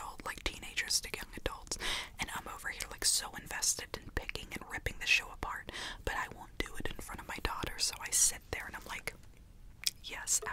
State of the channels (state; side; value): identical; both; correlation 1.00